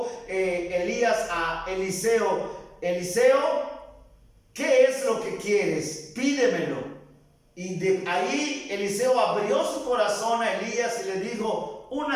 Elías a Eliseo, Eliseo, ¿qué es lo que quieres? Pídemelo. Y de ahí Eliseo abrió su corazón a Elías y le dijo,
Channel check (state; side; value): identical; both; correlation 1.00